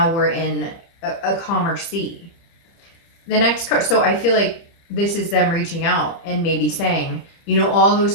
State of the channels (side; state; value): right; late; 30 ms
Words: we're in a calmer sea. The next card, so I feel like this is them reaching out and maybe saying, you know, all those